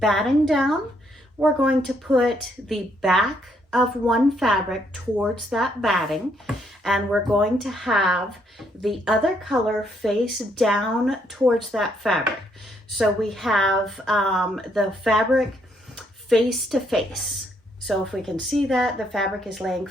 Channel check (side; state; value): both; normal; correlation 0.72